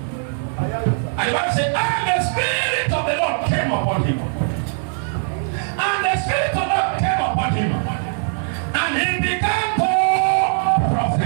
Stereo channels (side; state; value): left; silent; digital silence